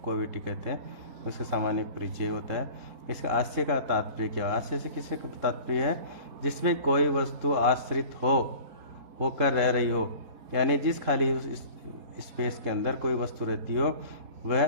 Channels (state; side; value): late; left; 3.7 ms